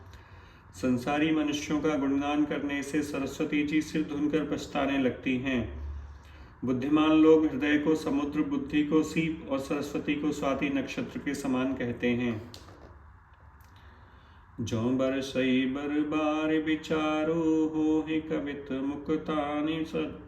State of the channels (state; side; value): identical; both; correlation 1.00